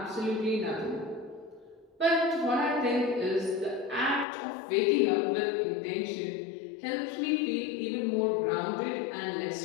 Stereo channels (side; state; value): right; drops out; at 4.2 s